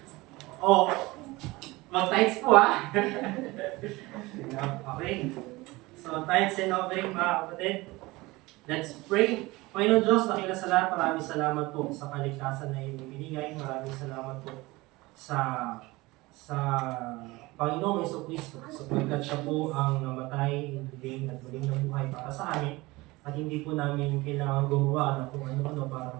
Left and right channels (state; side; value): quieter; left; 21.4 dB